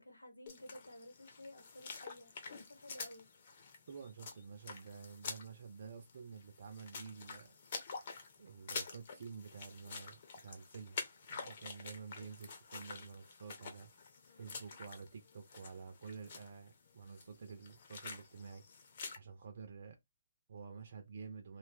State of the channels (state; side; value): inverted; both; correlation -0.72